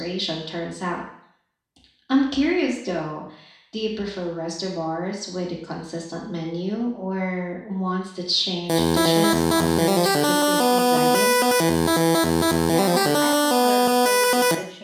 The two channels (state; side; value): identical; both; correlation 1.00